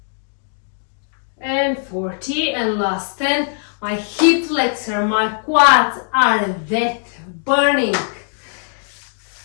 and 40, and last 10. My hip flexor, my quads are that burning.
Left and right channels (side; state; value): right; silent; 63 dB below the other